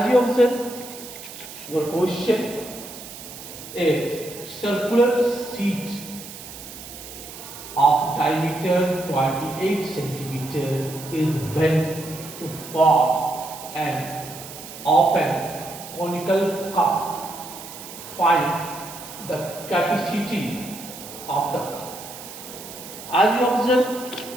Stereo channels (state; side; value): noise; right; hiss, 13 dB below the sound